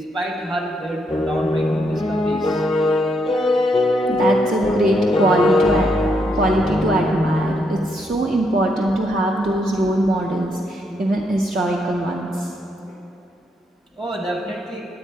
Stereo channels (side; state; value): both; normal; correlation 0.77